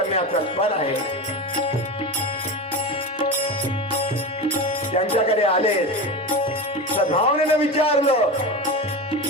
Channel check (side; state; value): both; normal; correlation 0.24